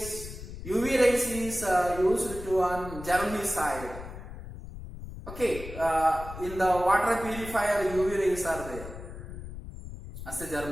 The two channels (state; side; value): noise; left; rumble, 11 dB below the sound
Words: UV rays is used to on germicide. Okay, in the water purifier UV rays are there as a